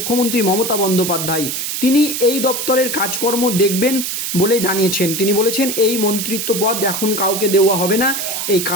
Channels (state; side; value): noise; right; hiss, 3 dB below the sound